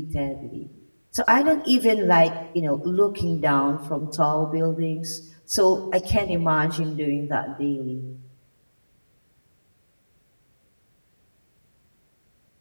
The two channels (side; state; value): both; inverted; correlation -1.00